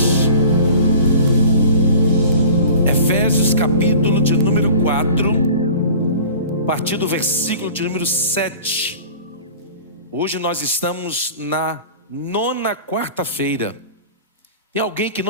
Efésios, capítulo de número 4, a partir do versículo de número 7. Hoje nós estamos na 9ª quarta-feira. Tem alguém que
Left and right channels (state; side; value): inverted; both; correlation -0.42